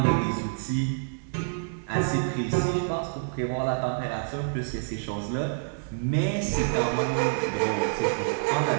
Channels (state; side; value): silent; left; digital silence